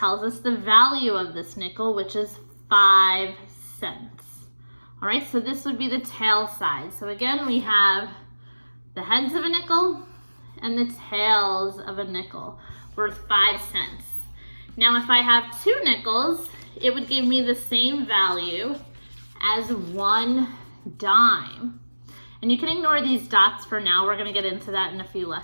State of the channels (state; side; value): inverted; both; correlation -1.00